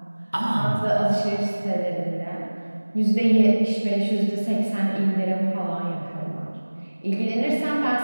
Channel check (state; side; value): inverted; both; correlation -1.00